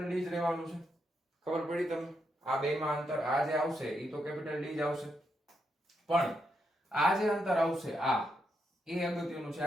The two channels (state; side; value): normal; both; correlation 0.80